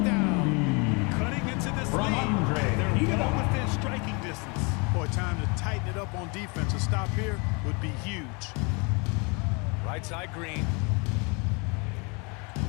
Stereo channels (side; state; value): right; quieter; 31.3 dB